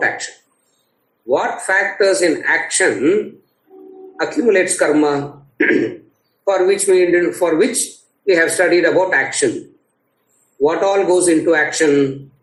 action. What factors in action accumulates karma? for which we have studied about action. What all goes into action?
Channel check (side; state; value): both; identical; correlation 1.00